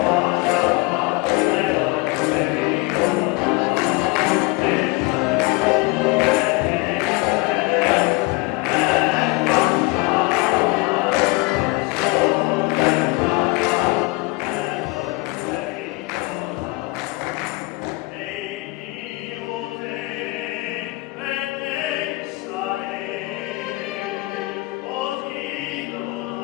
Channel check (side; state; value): right; quieter; 24.8 dB